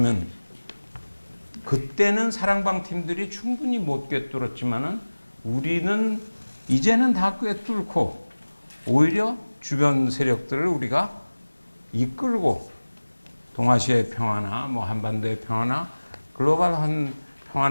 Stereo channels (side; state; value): both; inverted; correlation -1.00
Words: 그때는 사랑방 팀들이 충분히 못 꿰뚫었지만은 우리는 이제는 다 꿰뚫고 오히려 주변 세력들을 우리가 이끌고 동아시아의 평화나 뭐 한반도의 평화나 글로벌한